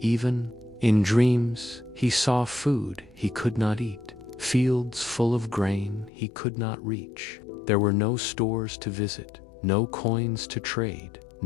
in dreams, he saw food he could not eat, fields full of grain he could not reach. There were no stores to visit, no coins to trade,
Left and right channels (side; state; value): right; drops out; at 6.1 s